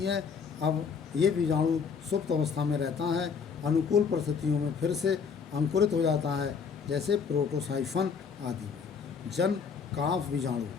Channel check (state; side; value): quieter; right; 6.0 dB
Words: है। अब ये बीजाणु सुप्त अवस्था में रहता है, अनुकूल परिस्थितियों में फिर से अंकुरित हो जाता है, जैसे प्रोटोसाइफन आदि में। जन काफ बीजाणु